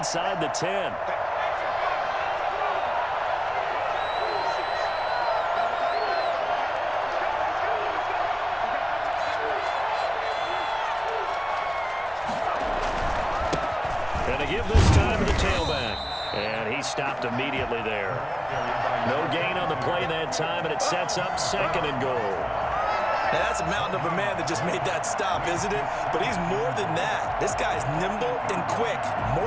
the 10. stopped immediately there. No gain on the play that time, and it sets up 2nd and goal. Now, that's a mountain of a man that just made that stop, isn't it? But he's more than that. This guy's nimble and quick.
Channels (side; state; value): both; identical; correlation 1.00